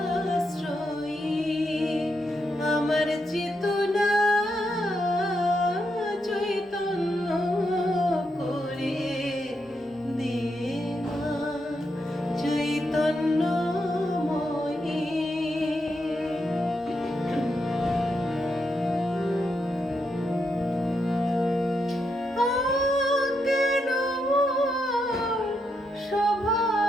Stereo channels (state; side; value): normal; both; correlation 0.82